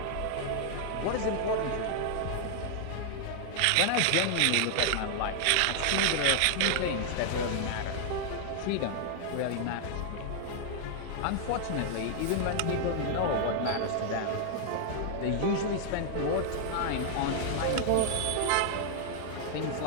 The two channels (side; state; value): both; different; correlation 0.00